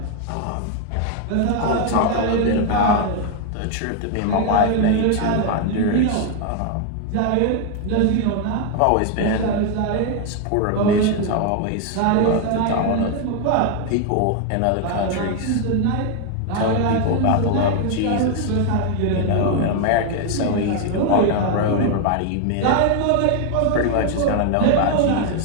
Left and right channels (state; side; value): different; both; correlation 0.00